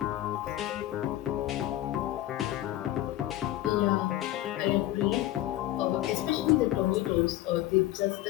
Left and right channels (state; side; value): quieter; right; 14.7 dB